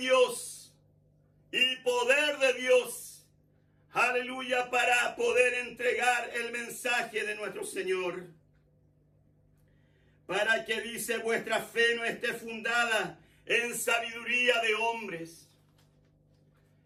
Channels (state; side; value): identical; both; correlation 1.00